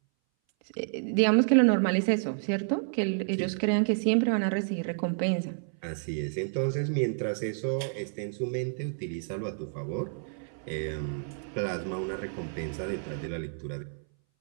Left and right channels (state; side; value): silent; left; 58 dB below the other